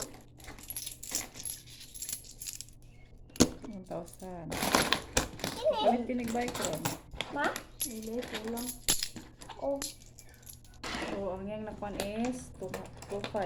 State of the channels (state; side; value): identical; both; correlation 1.00